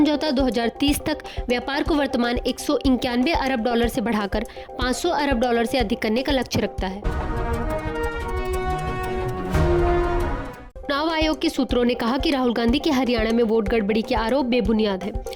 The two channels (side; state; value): both; identical; correlation 1.00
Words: 2030 तक व्यापार को वर्तमान $191 अरब से बढ़ाकर $500 अरब से अधिक करने का लक्ष्य रखता है। चुनाव आयोग के सूत्रों ने कहा कि राहुल गांधी के हरियाणा में वोट गड़बड़ी के आरोप बेबुनियाद है।